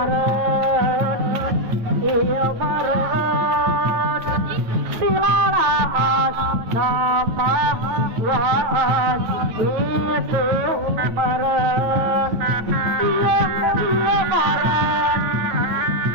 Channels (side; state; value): left; late; 9.3 ms